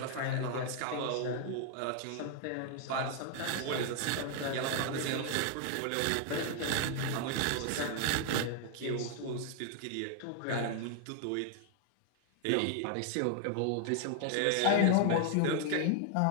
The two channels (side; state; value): both; different; correlation 0.00